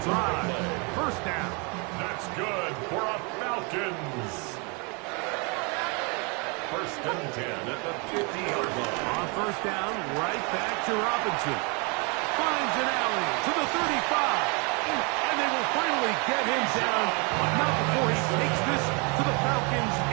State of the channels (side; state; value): left; quieter; 32.3 dB